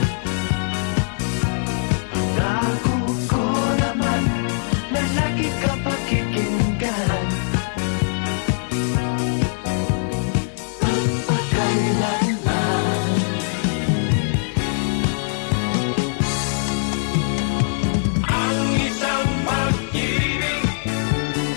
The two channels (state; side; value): silent; right; digital silence